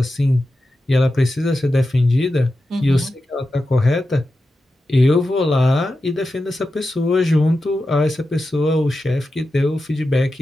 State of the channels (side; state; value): both; normal; correlation 0.91